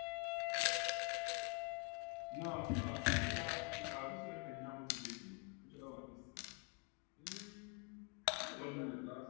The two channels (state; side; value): quieter; right; 34.4 dB